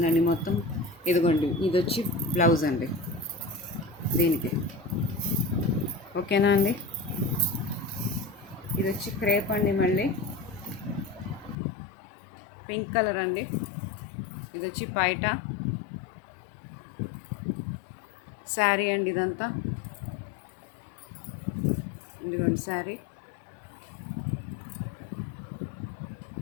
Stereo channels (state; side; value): drops out; right; at 11.6 s